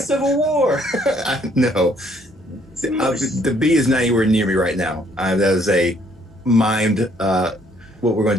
War. No. The bee is not anywhere near me right now. That is a mimed what we're going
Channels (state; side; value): normal; both; correlation 0.65